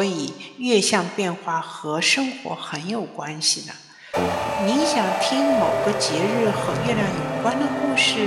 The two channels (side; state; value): both; identical; correlation 1.00